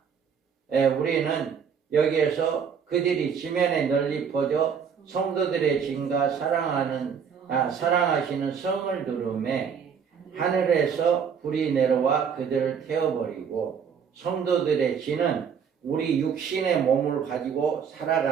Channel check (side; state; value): left; quieter; 7.0 dB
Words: 우리는 여기에서 그들이 지면에 널리 퍼져 성도들의 진과 사랑하시는 성을 두름에 하늘에서 불이 내려와 그들을 태워버리고 성도들의 진은 우리 육신의 몸을 가지고